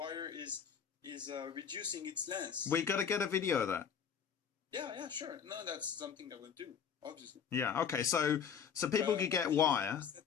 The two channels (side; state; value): right; quieter; 7.4 dB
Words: is reducing its length. We got to get a video of that. Yeah, sure. No, that's something I will do. Obviously. Yeah. Okay. So people could get wire.